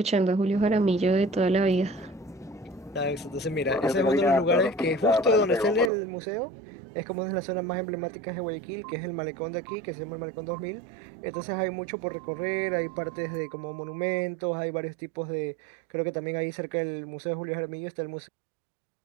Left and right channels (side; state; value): left; drops out; at 5.9 s